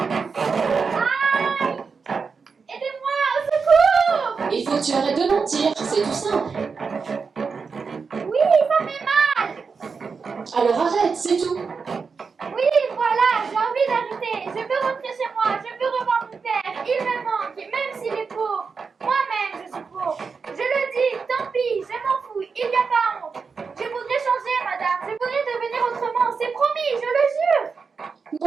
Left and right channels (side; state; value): left; quieter; 5.2 dB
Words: Aidez-moi, au secours! Il faut que tu arrêtes de mentir, c'est tout simple. Oui, ça fait mal. Alors arrête, c'est tout. Oui, voilà, j'ai envie d'arrêter. Je veux rentrer chez moi, je veux revoir mon père. Il me manque, même s'il est pauvre. Moi-même, je suis pauvre. Je le dis, tant pis, je m'en fous, il n'y a pas honte. Je voudrais changer, madame. Je voudrais devenir autrement. C'est promis, je le jure.